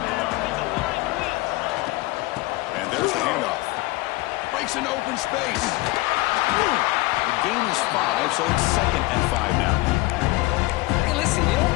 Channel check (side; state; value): right; quieter; 20.9 dB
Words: And there's the handoff. Breaks into open space. The game is 5, so it's 2nd and 5 now. Hey, listen, you